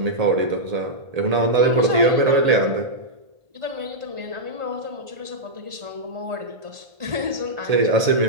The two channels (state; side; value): late; left; 1.8 ms